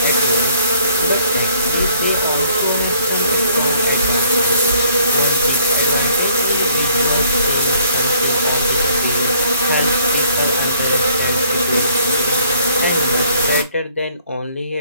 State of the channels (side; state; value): both; inverted; correlation -0.62